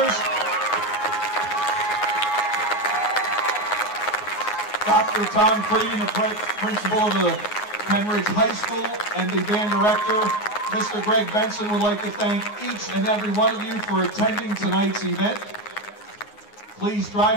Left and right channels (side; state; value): right; late; 9.6 ms